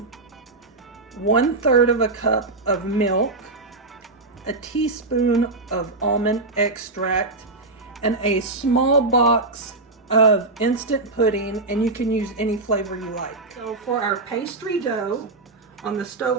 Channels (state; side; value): quieter; left; 3.2 dB